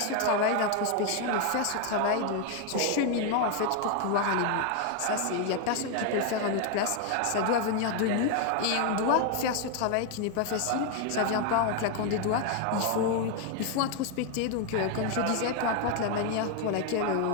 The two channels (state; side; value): different; both; correlation 0.01